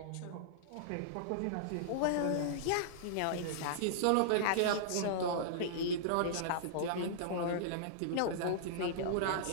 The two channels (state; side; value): different; both; correlation -0.02